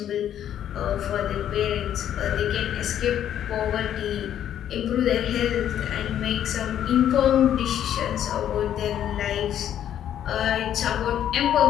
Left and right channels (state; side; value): quieter; right; 10.4 dB